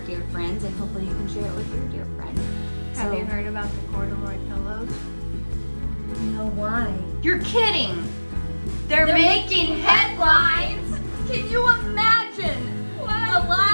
dear friends, and hopefully you can share it with your dear friend. Have you heard about the corduroy pillows? No, why? You're kidding! They're making headlines! Can you imagine the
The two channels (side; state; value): both; inverted; correlation -1.00